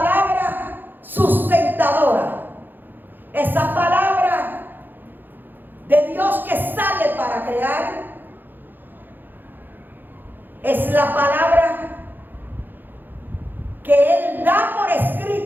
sustentadora, esa palabra de Dios que sale para crear, es la palabra que Él da por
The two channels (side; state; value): left; late; 0.091 ms